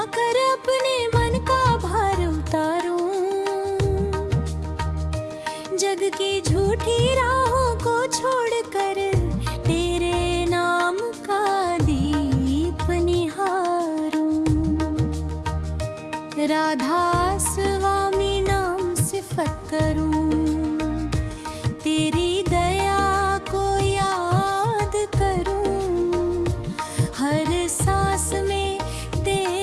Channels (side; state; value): both; identical; correlation 1.00